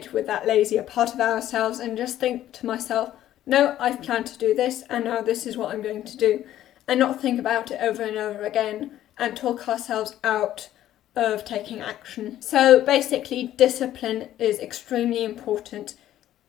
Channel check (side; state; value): right; quieter; 12.7 dB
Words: with that lazier part of ourselves and just think to myself, no, I've planned to do this and now this is what I'm going to do, and not think about it over and over again and talk ourselves out of taking action. So basically, discipline is extremely important